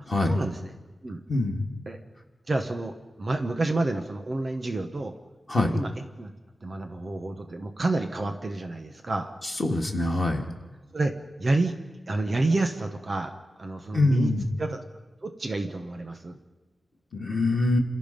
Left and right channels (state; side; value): normal; both; correlation 0.90